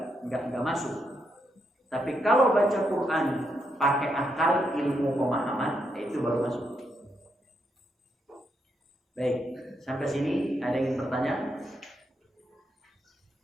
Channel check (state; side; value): normal; both; correlation 0.80